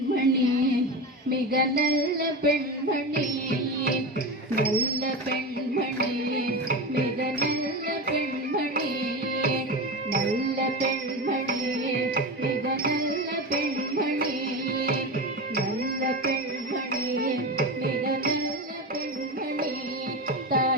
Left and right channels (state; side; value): normal; both; correlation 0.22